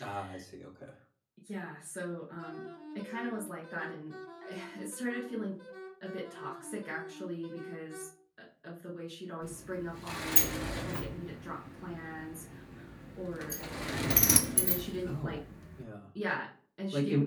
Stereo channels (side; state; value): both; identical; correlation 1.00